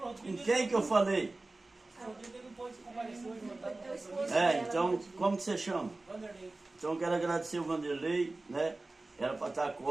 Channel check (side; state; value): left; quieter; 3.1 dB